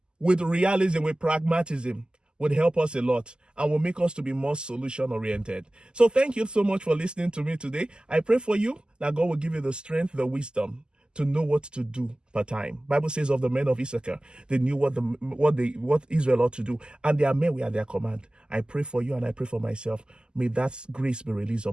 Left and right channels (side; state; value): left; late; 0.047 ms